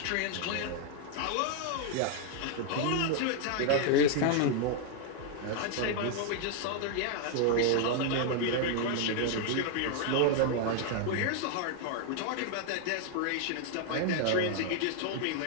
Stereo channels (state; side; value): different; both; correlation 0.00